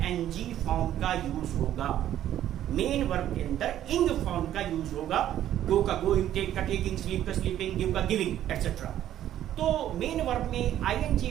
फॉर्म का यूज होगा। मेन वर्ब के अंदर इंग फॉर्म का यूज होगा। गो का गोइंग, टेक का टेकिंग, स्लीप का स्लीपिंग, गिव का गिविंग, एक्सेट्रा। तो मेन वर्ब में आईएनजी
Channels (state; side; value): quieter; left; 11.8 dB